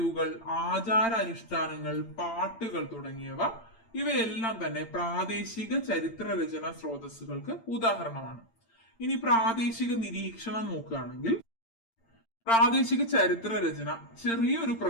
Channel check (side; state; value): right; late; 8.8 ms